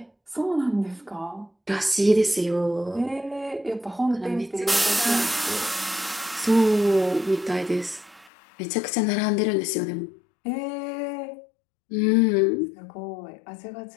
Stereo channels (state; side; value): drops out; right; at 8.3 s